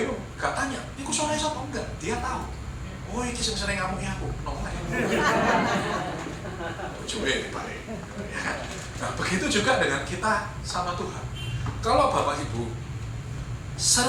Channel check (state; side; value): identical; both; correlation 1.00